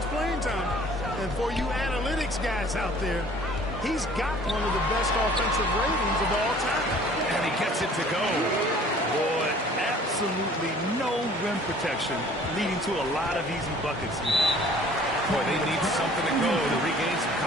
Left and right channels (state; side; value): normal; both; correlation 0.52